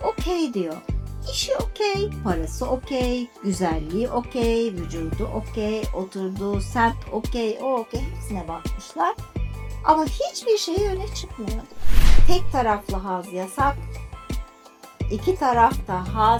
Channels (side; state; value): both; identical; correlation 1.00